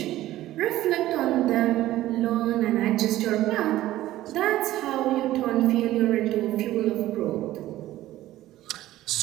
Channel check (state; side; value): quieter; left; 15.0 dB